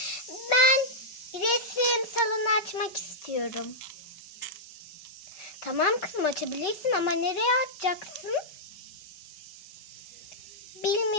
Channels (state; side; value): late; right; 5.3 ms